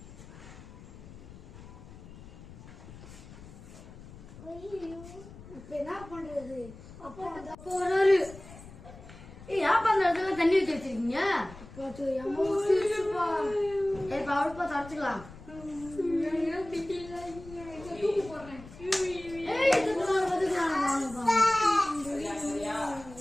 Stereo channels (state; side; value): noise; left; rumble, 17 dB below the sound